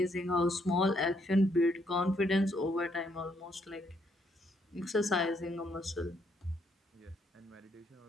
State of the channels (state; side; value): normal; both; correlation 0.72